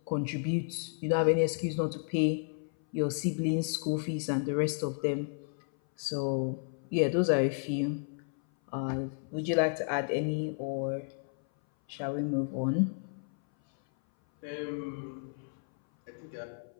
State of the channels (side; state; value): right; silent; 56 dB below the other